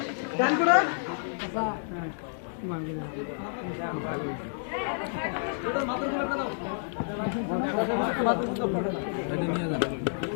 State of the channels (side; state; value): right; silent; digital silence